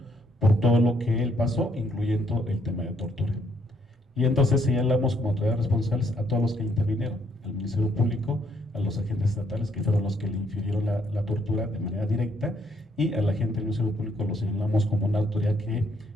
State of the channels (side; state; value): both; normal; correlation 0.70